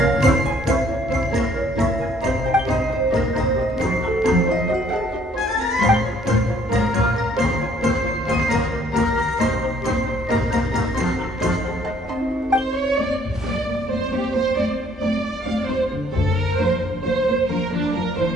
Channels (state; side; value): normal; both; correlation 0.63